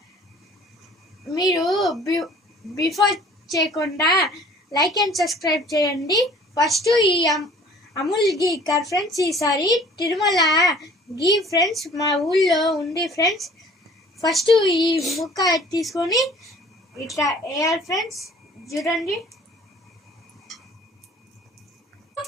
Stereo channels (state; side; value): normal; both; correlation 0.51